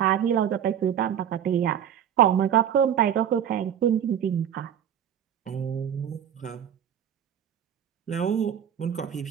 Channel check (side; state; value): left; quieter; 9.5 dB